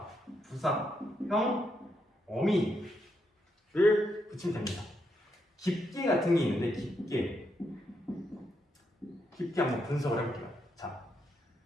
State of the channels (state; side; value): normal; both; correlation 0.80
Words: 부사형 어미를 붙이면 됩니다. 깊게 같은 게 있는데 깊게 한번 분석을 해볼게요. 자,